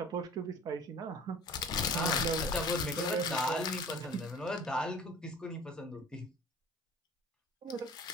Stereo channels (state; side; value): normal; both; correlation 0.44